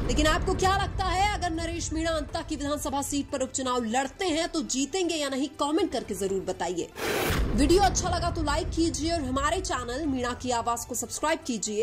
लेकिन आपको क्या लगता है, अगर नरेश मीणा अंता की विधानसभा सीट पर उपचुनाव लड़ते हैं तो जीतेंगे या नहीं? कमेंट करके जरूर बताइए। वीडियो अच्छा लगा तो लाइक कीजिए और हमारे चैनल मीणा की आवाज को सब्सक्राइब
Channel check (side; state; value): both; identical; correlation 1.00